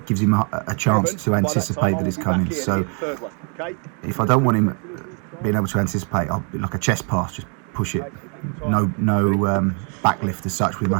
gives him a chance to anticipate that it's coming. So if I don't want him being able to anticipate, I'll be like a chest pass, just push it, no back lift as such with my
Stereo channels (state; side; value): quieter; left; 39.2 dB